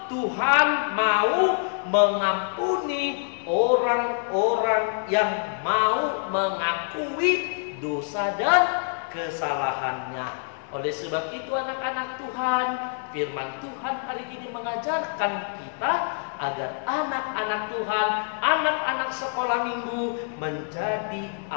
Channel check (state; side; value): silent; right; 59 dB below the other